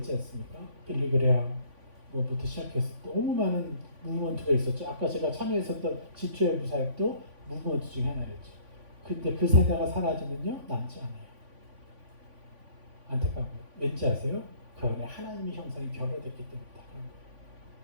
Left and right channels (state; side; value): late; left; 3.5 ms